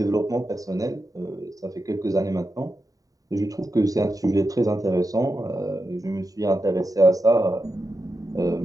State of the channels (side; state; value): left; late; 0.17 ms